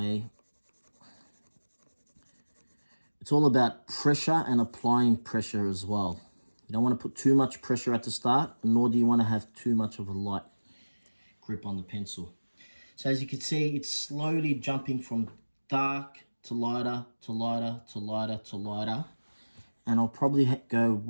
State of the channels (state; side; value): inverted; both; correlation -1.00